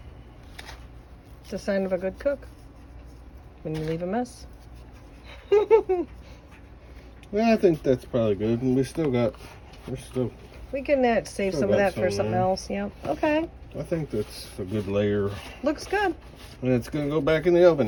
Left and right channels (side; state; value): both; identical; correlation 1.00